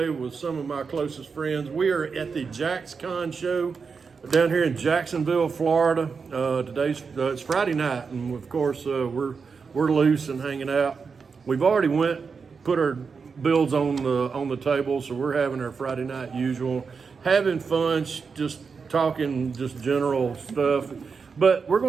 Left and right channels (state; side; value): quieter; left; 5.4 dB